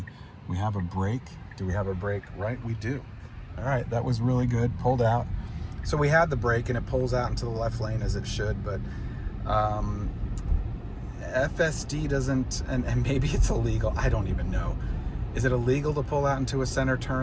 We have a break. Do we have a break? Right, we do. All right, that was really good. Pulled out. So we had the break, and it pulls out into the left lane as it should, but FSD doesn't, and maybe it's illegal. I don't even know. Is it illegal to pull out into a center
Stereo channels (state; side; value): identical; both; correlation 1.00